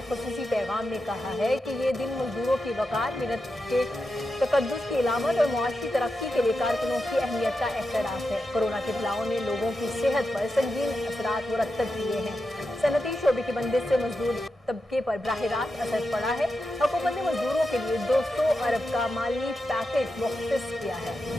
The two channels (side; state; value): both; normal; correlation 0.88